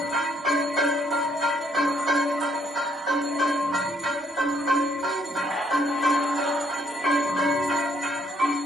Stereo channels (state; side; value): normal; both; correlation 0.68